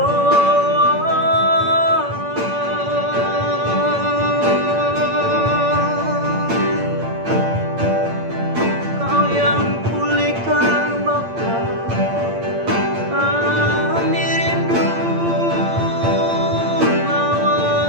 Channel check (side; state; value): left; late; 8.7 ms